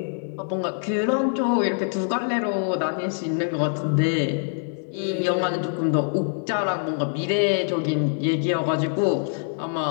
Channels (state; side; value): silent; right; digital silence